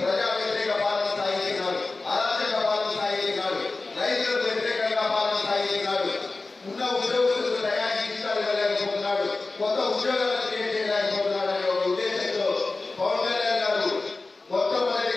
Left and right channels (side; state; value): right; quieter; 3.5 dB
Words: వ్యతిరేక పాలన సాగిస్తున్నాడు, అరాచక పాలన సాగిస్తున్నాడు, రైతులకు వ్యతిరేకంగా పాలన సాగిస్తున్నాడు, ఉన్న ఉద్యోగస్తులకు తయారీ జీతాలు ఇవ్వలేకపోతున్నాడు, కొత్త ఉద్యోగాలు క్రియేట్ చేయలేకపోతున్నాడు అనే ఒక ఉద్దేశంతో పవన్ కళ్యాణ్ గారు